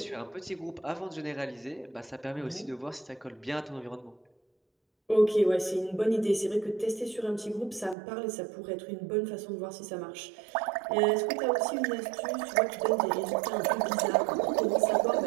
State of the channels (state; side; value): drops out; left; at 8.0 s